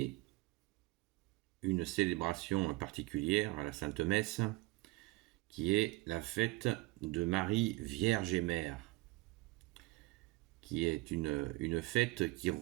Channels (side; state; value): left; quieter; 21.4 dB